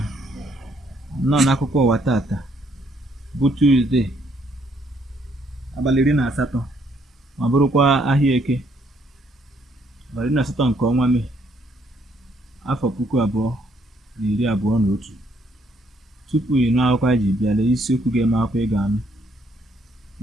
Nnọọ n'akụkọ ụwa tata bụ Tuzdee abalị 18 ma bụrụkwa ahịa Eke abalị 18 nke ọnwa Mee afọ 2021. Tupu ị nụ akụkọ anyị ji bịa, lee isiokwu ga-eme akụkọ ị ga-anụ.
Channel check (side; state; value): both; normal; correlation 0.69